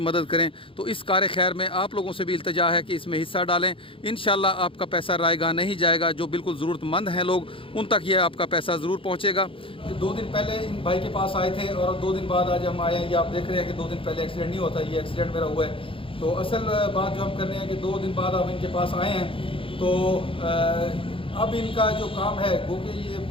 کریں. تو اس کار خیر میں آپ لوگوں سے بھی التجا ہے کہ اس میں حصہ ڈالیں. انشاءاللہ آپ کا پیسہ رائے گاہ نہیں جائے گا. جو بالکل ضرورت مند ہیں لوگ ان تک یہ آپ کا پیسہ ضرور پہنچے گا. 2 دن پہلے ان بھائی کے پاس آئے تھے اور 2 دن بعد آج ہم آئے ہیں. یہ آپ دیکھ رہے ہیں کہ 2 دن پہلے ایکسیڈنٹ نہیں ہوتا, یہ ایکسیڈنٹ میرا ہوا ہے. تو اصل بات جو ہم کر رہے ہیں کہ 2 دن بعد آپ ان کے پاس آئے ہیں تو اب ان کا جو کام ہے وہ کہ یہ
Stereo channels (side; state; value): right; late; 0.26 ms